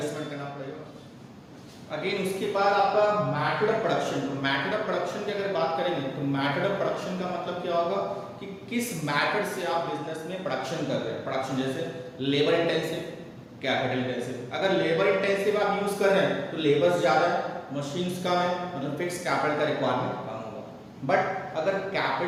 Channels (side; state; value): both; identical; correlation 1.00